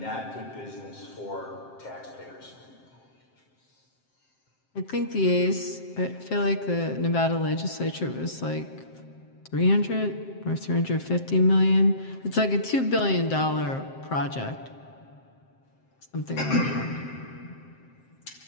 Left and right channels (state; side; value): late; right; 7.6 ms